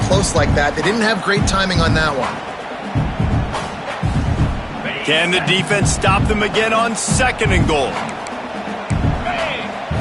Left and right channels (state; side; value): identical; both; correlation 1.00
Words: close like that. They didn't have great timing on that one. Can the defense stop them again on 2nd and goal?